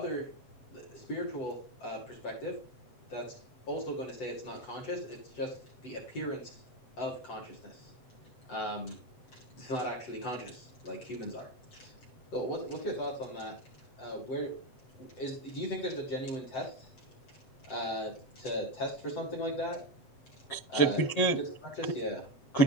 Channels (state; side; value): late; right; 7.9 ms